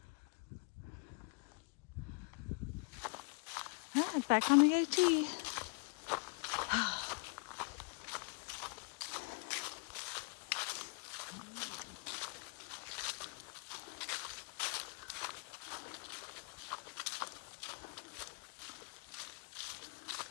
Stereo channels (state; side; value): quieter; right; 36.0 dB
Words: Yeah, back on the AT.